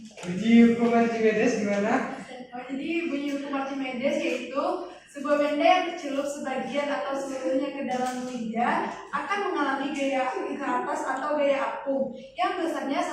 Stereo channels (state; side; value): identical; both; correlation 1.00